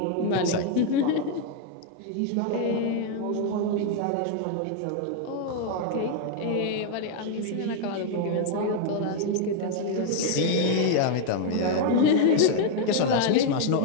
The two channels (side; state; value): both; different; correlation 0.00